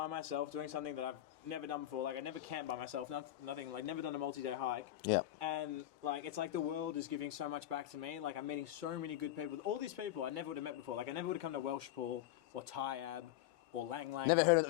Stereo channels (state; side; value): quieter; right; 13.6 dB